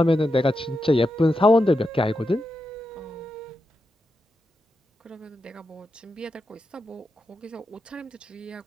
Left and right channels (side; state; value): both; normal; correlation 0.87